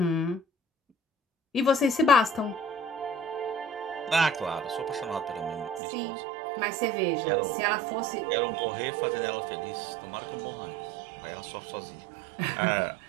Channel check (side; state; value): left; drops out; at 5.8 s